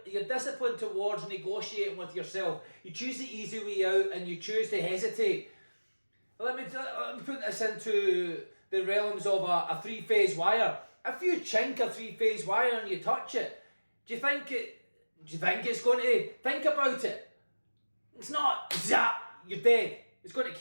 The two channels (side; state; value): both; inverted; correlation -1.00